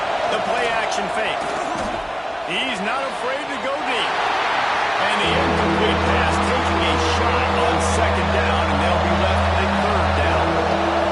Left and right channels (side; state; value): both; identical; correlation 1.00